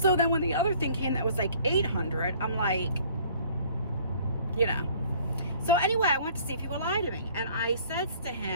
then when the other thing came that was like $800, I'm like, you know. So anyway, I went to see if he would lie to me. And I said to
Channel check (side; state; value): both; inverted; correlation -0.55